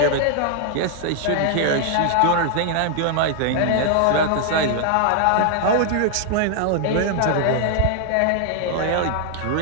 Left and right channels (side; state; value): both; different; correlation 0.00